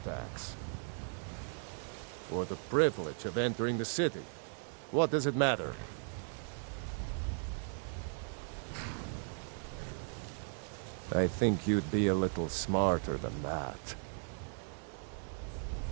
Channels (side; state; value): left; silent; 53 dB below the other